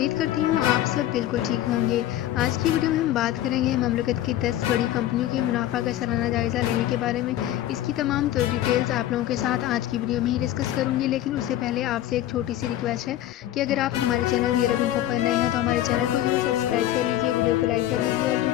करती हूँ आप सब बिल्कुल ठीक होंगे। आज की वीडियो में हम बात करेंगे ममलकत की 10 बड़ी कंपनियों के मुनाफा का सालाना जायज़ा लेने के बारे में। इसकी तमाम डिटेल्स आप लोगों के साथ आज की वीडियो में ही डिस्कस करूँगी, लेकिन उससे पहले आपसे एक छोटी सी रिक्वेस्ट है कि अगर आप हमारे चैनल नियर इन्फो पर नए हैं तो हमारे चैनल को जरूर सब्सक्राइब कर लीजिए, वीडियो को लाइक कर लीजिए और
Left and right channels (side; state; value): right; quieter; 13.1 dB